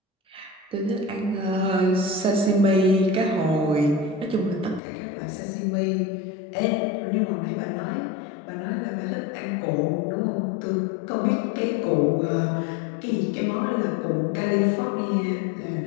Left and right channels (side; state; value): right; drops out; at 4.8 s